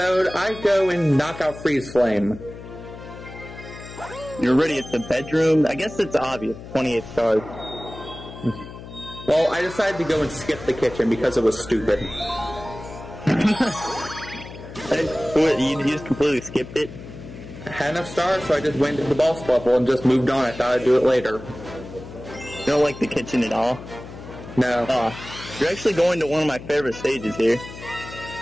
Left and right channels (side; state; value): left; noise; hum, 14 dB below the sound